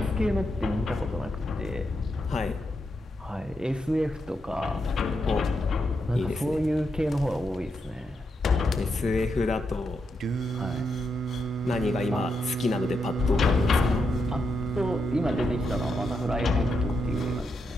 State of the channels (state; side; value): normal; both; correlation 0.83